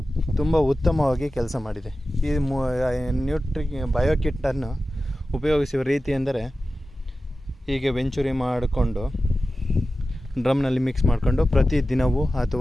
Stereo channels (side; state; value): both; normal; correlation 0.95